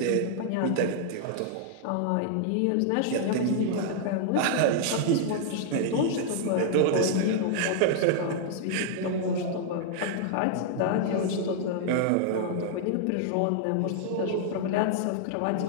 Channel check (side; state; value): both; different; correlation -0.01